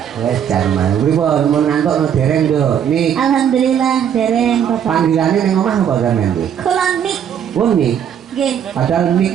Wes jarman. Pripun mun ngantukno dereng, Nduk? Nik. Alhamdulillah dereng Bapak. Panggilane ning omah apa sampean, Nduk? Kula Nik. Oh, Nik. Nggih. Padahal Nik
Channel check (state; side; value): quieter; left; 8.9 dB